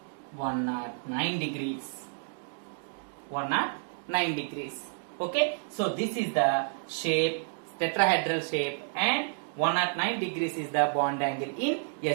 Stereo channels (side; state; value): left; silent; digital silence